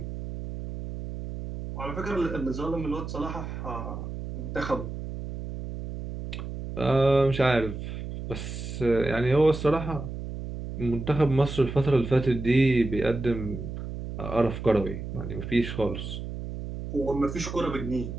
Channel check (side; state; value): right; noise; hum, 7 dB below the sound